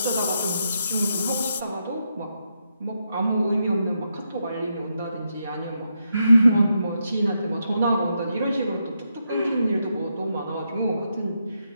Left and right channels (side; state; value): both; inverted; correlation -0.82